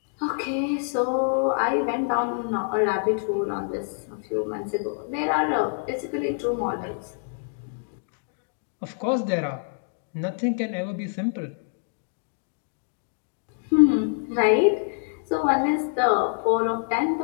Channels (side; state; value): right; silent; digital silence